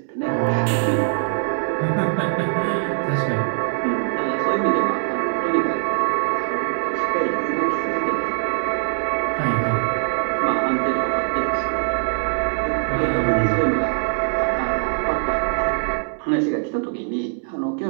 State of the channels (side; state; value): left; silent; digital silence